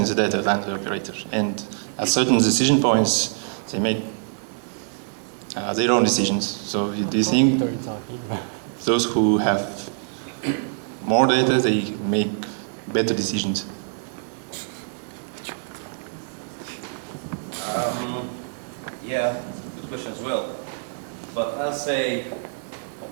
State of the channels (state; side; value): silent; left; digital silence